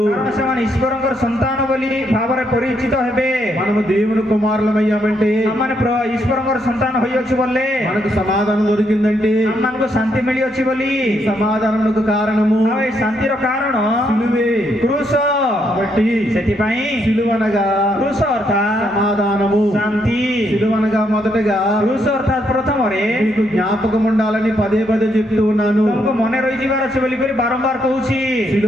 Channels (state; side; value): normal; both; correlation 0.76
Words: କାରଣ ସେମାନେ ଈଶ୍ୱରଙ୍କର ସନ୍ତାନ ବୋଲି ଭାବରେ ପରିଚିତ ହେବେ। మనము దేవుని కుమారులమయ్యామంటే, ଆମମାନେ ଈଶ୍ୱରଙ୍କର ସନ୍ତାନ ହୋଇଅଛୁ ବୋଲେ మనకు సమాధానం దొరికిందంటే, ଆମମାନଙ୍କୁ ଶାନ୍ତି ମିଳିଅଛି ବୋଲି। సమాధానమునకు కారణము ଆଉ ଏ ଶାନ୍ତିର କାରଣ సిలువే. କ୍ରୁଶ। కాబట్టి ସେଥିପାଇଁ సిలువనగా କ୍ରୁଶ ଅର୍ଥାତ୍ సమాధానము, ଶାନ୍ତି। సిలువనగా మొదటగా କ୍ରୁଶ ଅର୍ଥାତ୍ ପ୍ରଥମରେ మీకు జ్ఞాపకం ఉండాలని పదే పదే చెప్తూ ఉన్నాను. ତମକୁ ମନେ ରହିଯିବାର ଅଛି ବୋଲି କରି ବାରମ୍ବାର କହୁଛି।